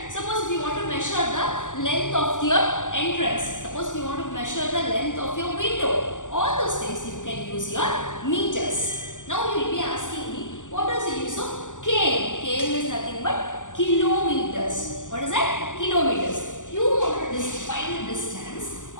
Suppose if you want to measure the length of your entrance, suppose you want to measure the length of your window, all those things you can use your meters. Now you will be asking me, what is the use of km? Km is nothing but kilometers. What is that? Kilometers. You want to find the distance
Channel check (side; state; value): right; late; 0.87 ms